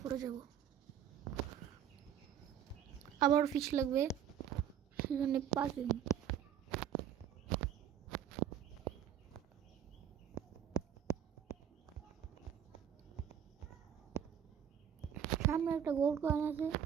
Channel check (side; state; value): left; quieter; 9.4 dB